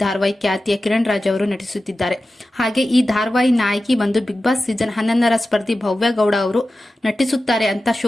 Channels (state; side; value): normal; both; correlation 0.94